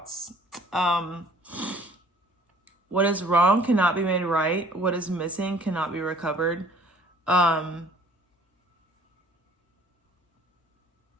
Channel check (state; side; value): normal; both; correlation 0.55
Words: What is wrong cannot be made right. What is missing cannot be recovered.